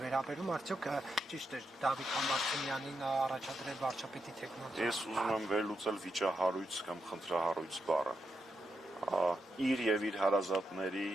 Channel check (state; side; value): normal; both; correlation 0.84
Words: վերաբերում, արդյոք ճիշտ է Դավիթ Համբարձումյանին առաջադրել վարչապետի տեխնացու։ Ես ուզում եմ վերլուծել վիճահարույց կամ խնդրահարույց բառը։ Իր եւ իր հարազատների,